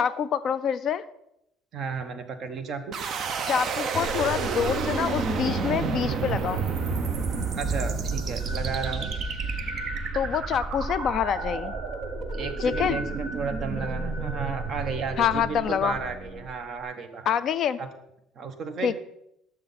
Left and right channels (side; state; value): both; normal; correlation 0.58